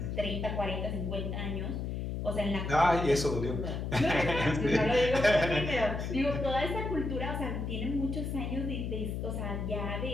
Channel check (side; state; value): left; noise; hum, 3 dB below the sound